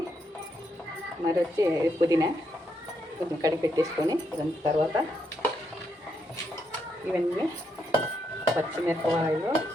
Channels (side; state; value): both; normal; correlation 0.79